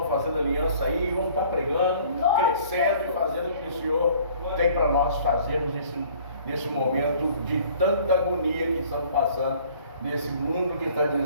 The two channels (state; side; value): inverted; both; correlation -0.54